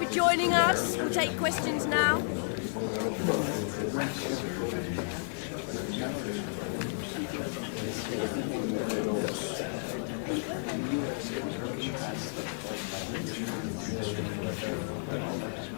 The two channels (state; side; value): silent; right; digital silence